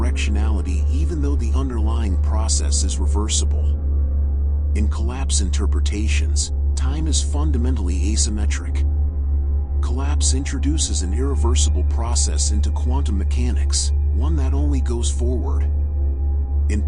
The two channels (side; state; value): both; identical; correlation 1.00